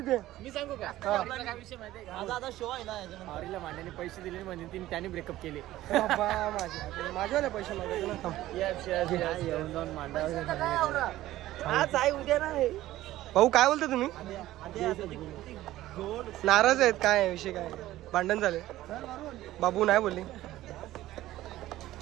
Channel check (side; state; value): left; quieter; 15.2 dB